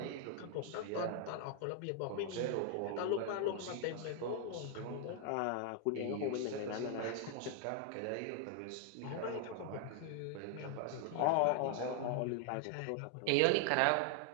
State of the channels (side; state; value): both; different; correlation 0.00